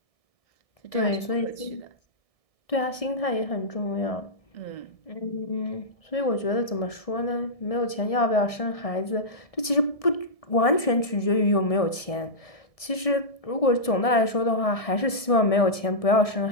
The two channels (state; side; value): late; right; 1.7 ms